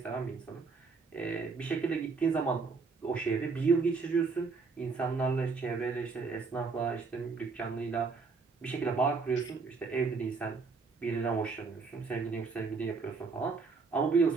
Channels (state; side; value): quieter; left; 4.6 dB